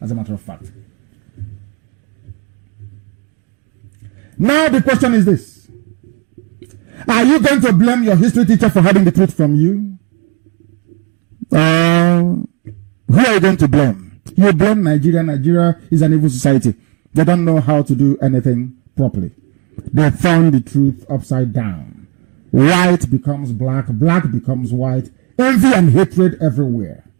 as a matter of fact. Now the question is this. Are you going to blame your history teacher for hiding the truth from you? Who are you going to blame? You blame Nigeria. Nigeria is an evil society. They don't know how to do anything properly. They turn the truth upside down. White becomes black, black becomes white, envy and hatred everywhere.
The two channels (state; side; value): quieter; left; 29.4 dB